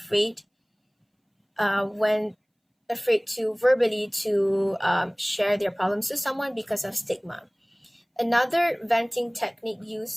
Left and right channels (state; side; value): identical; both; correlation 1.00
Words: when afraid to verbally to share their problems to someone because of stigma. Another venting technique